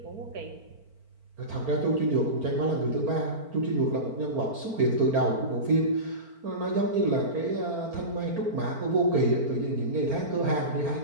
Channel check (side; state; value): left; late; 4.4 ms